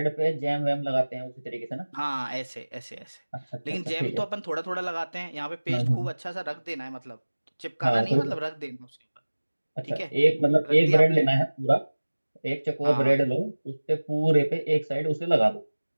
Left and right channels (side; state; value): both; inverted; correlation -1.00